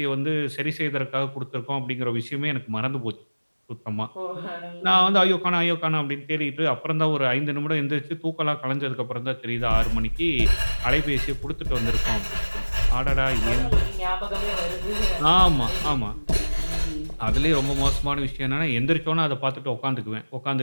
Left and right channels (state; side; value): inverted; both; correlation -1.00